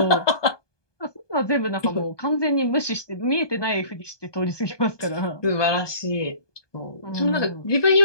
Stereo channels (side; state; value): right; late; 1.2 ms